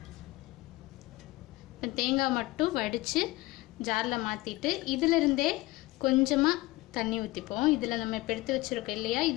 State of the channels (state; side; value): quieter; right; 19.9 dB